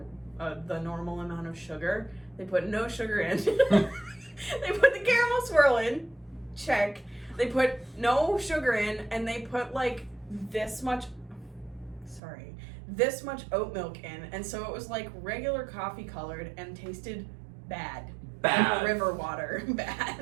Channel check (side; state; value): left; drops out; at 12.2 s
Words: the normal amount of sugar. They put no sugar in. They put the caramel swirl in. Check. They put no sugar in, and they put like this much oat milk in, and so it was like regular coffee colored and tasted bad. Bad. River water.